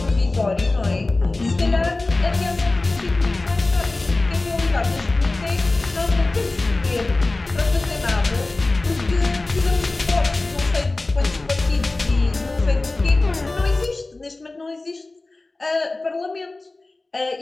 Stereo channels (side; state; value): right; quieter; 3.1 dB